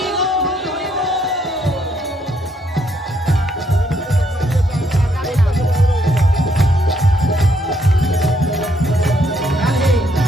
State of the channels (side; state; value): both; normal; correlation 0.72